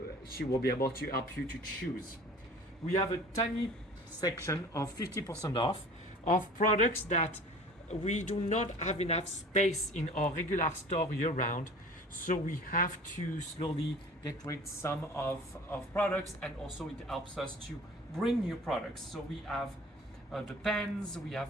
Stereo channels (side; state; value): both; normal; correlation 0.44